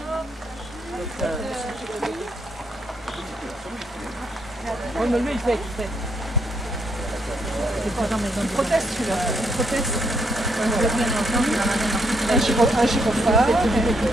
Oui, mais lui, il fait. Il proteste, celui-là. Il proteste. Un gyrophare.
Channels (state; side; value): normal; both; correlation 0.74